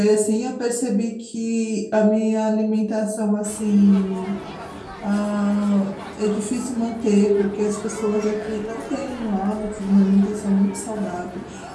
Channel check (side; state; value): both; identical; correlation 1.00